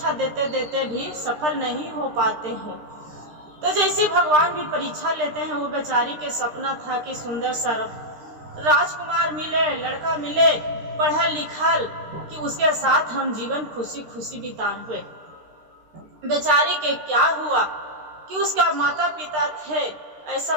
देते देते भी सफल नहीं हो पाते हैं। तो जैसे भगवान भी परीक्षा लेते हैं, वो बेचारी के सपना था कि सुंदर सा राजकुमार मिले, लड़का मिले, पढ़ा लिखल, कि उसके साथ हम जीवन खुशी खुशी बिताए। बेचारी के क्या हुआ कि उसका माता पिता थे, ऐसा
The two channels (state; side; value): late; left; 13 ms